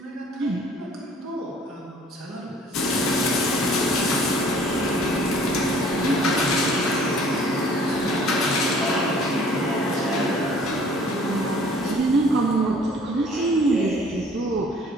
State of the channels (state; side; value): normal; both; correlation 0.54